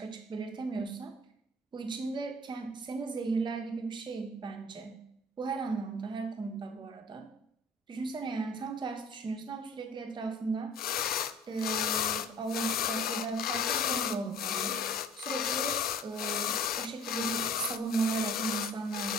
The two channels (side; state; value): both; normal; correlation 0.48